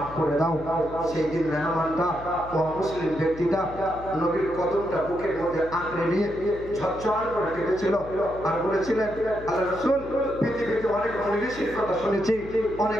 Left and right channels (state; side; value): noise; left; hum, 15 dB below the sound